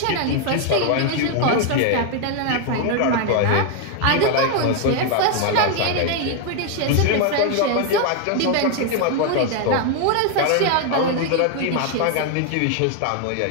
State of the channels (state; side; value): different; both; correlation 0.00